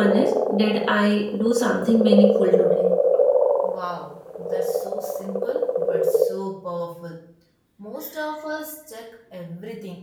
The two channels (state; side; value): identical; both; correlation 1.00